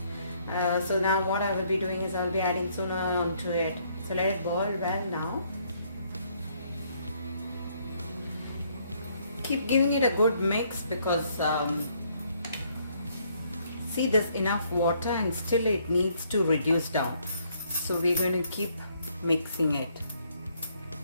So now what I will be doing is I will be adding sooner onto it. So let it boil well now. Keep giving it a good mix because see, there's enough water and still it needs to reduce down. So we're going to keep mixing it.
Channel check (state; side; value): inverted; both; correlation -0.68